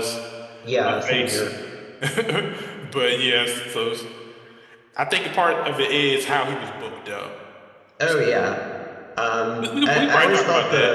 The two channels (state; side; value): identical; both; correlation 1.00